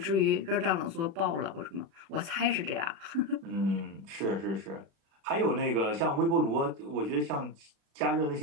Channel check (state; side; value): late; left; 36 ms